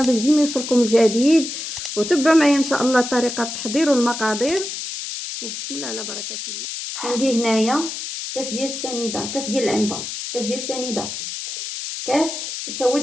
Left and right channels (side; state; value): left; noise; hiss, 7 dB below the sound